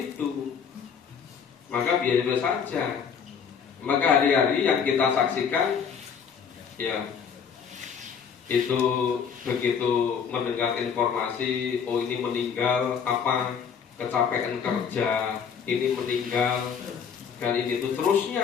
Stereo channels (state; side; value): quieter; right; 6.9 dB